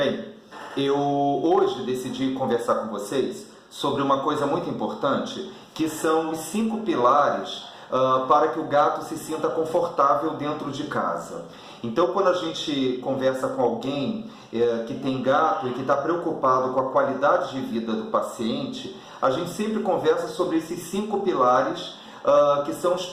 eu hoje decidi conversar com vocês sobre uma coisa muito importante, que são os 5 pilares para que o gato se sinta confortável dentro de casa. Então, quando a gente conversa com alguém que tem gato e que está preocupado com a qualidade de vida do paciente, a gente sempre conversa sobre esses 5 pilares, que são os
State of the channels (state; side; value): identical; both; correlation 1.00